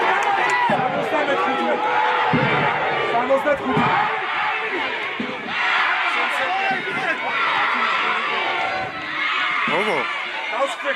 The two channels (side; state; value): both; identical; correlation 1.00